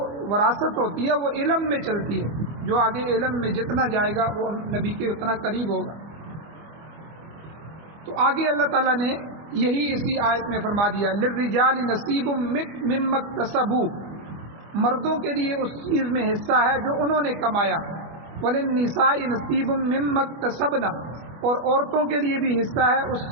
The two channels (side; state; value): left; late; 25 ms